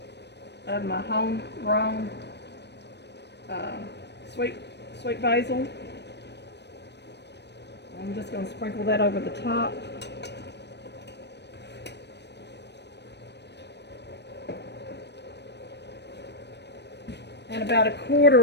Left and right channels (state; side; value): late; right; 0.50 ms